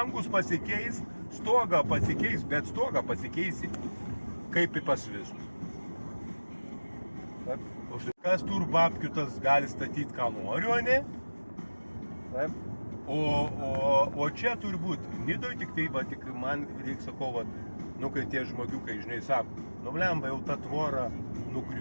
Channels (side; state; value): both; inverted; correlation -1.00